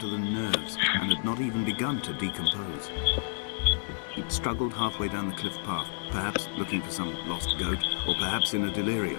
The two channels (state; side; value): silent; right; digital silence